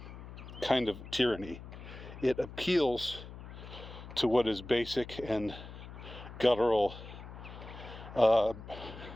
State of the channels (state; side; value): noise; left; hum, 13 dB below the sound